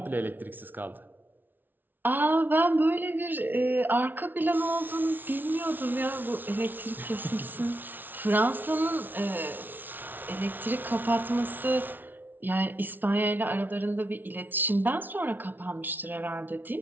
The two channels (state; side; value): late; left; 0.090 ms